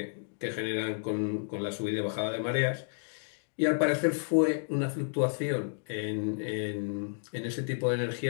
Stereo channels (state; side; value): silent; right; digital silence